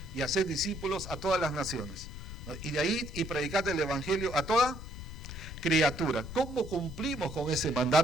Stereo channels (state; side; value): noise; left; rumble, 10 dB below the sound